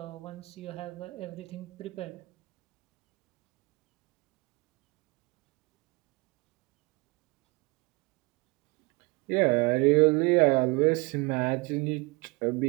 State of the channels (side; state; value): left; quieter; 25.7 dB